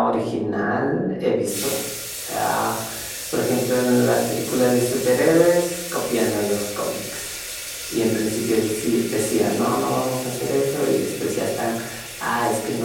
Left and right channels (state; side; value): identical; both; correlation 1.00